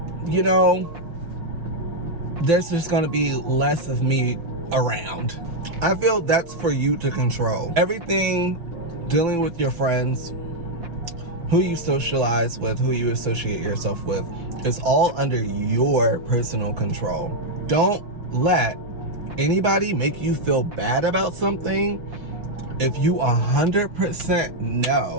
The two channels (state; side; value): late; left; 5.9 ms